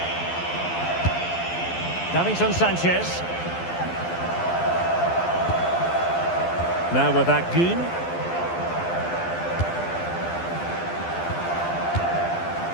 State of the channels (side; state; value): right; late; 12 ms